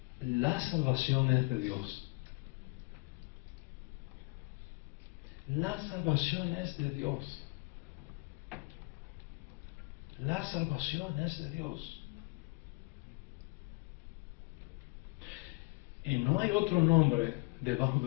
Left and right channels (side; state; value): right; quieter; 28.2 dB